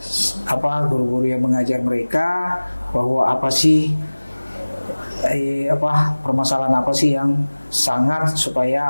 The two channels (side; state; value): both; inverted; correlation -1.00